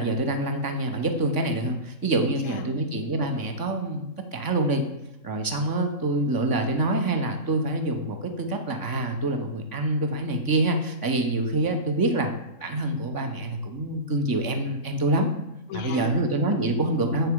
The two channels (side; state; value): right; late; 3.5 ms